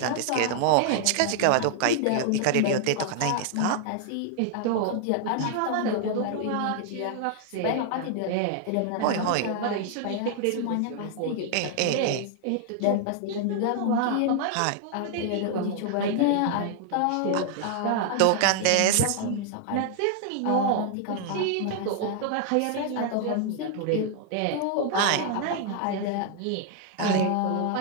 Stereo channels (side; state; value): both; different; correlation 0.00